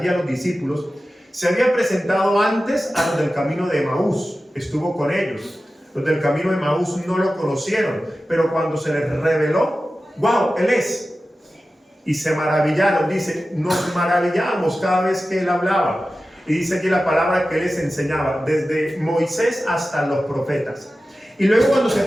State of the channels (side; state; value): both; normal; correlation 0.94